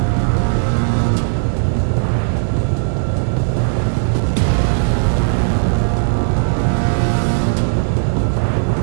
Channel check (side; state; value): left; silent; digital silence